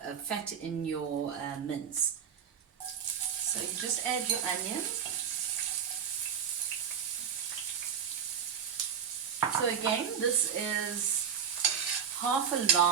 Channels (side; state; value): left; quieter; 7.8 dB